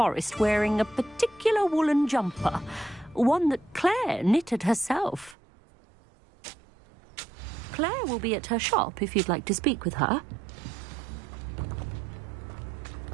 wearing a particular woolen jumper, one that Claire knitted herself. Claire will be at her shop if you'd like to speak with her.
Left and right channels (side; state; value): left; drops out; at 5.4 s